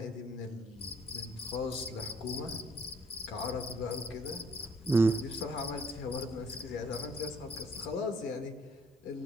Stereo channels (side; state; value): both; normal; correlation 0.64